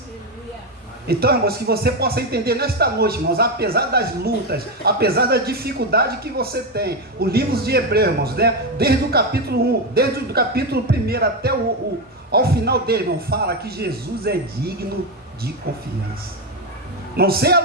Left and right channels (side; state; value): both; normal; correlation 0.10